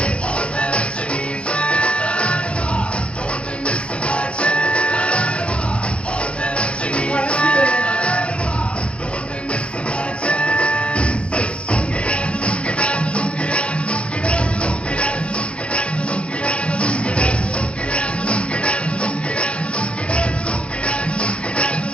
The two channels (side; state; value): right; late; 0.059 ms